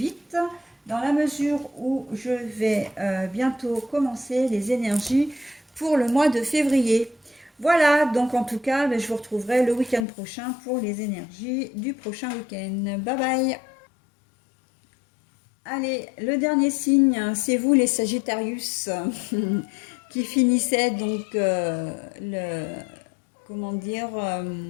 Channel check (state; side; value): drops out; right; at 10.1 s